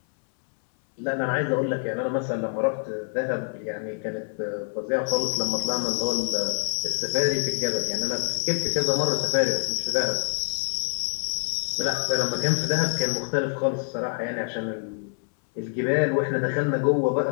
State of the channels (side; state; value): right; silent; 61 dB below the other